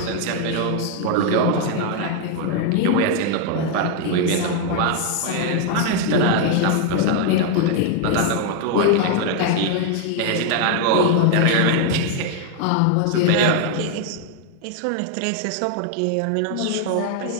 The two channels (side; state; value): both; different; correlation 0.00